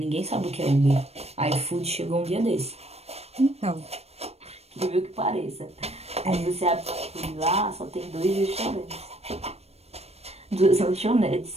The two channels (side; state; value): left; late; 0.30 ms